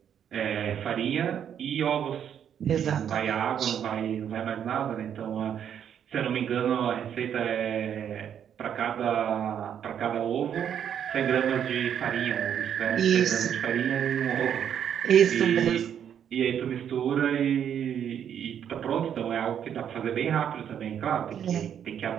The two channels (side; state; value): left; quieter; 8.9 dB